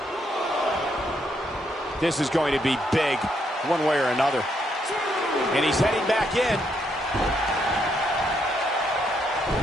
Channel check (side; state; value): both; normal; correlation 0.75